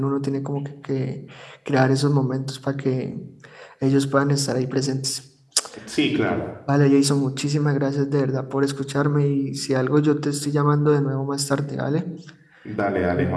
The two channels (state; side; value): identical; both; correlation 1.00